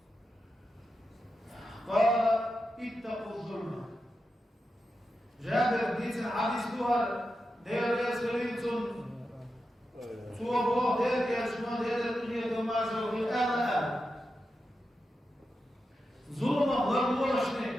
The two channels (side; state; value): both; normal; correlation 0.89